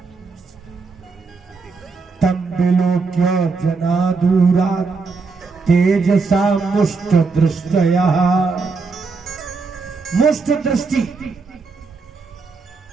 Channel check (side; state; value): left; quieter; 4.4 dB